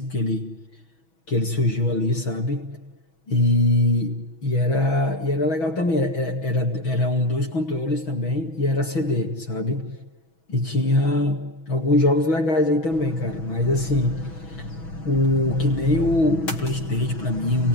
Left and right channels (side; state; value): right; late; 6.2 ms